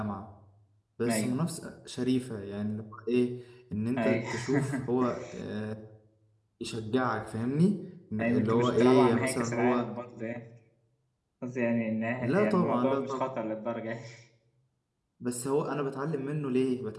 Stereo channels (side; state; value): both; identical; correlation 1.00